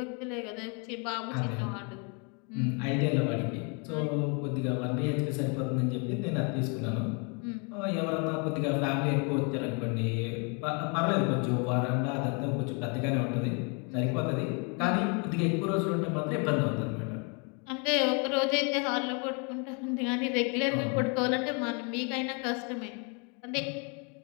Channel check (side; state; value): right; quieter; 35.1 dB